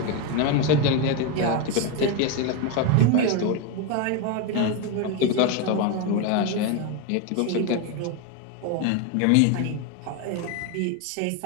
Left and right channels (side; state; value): both; different; correlation 0.02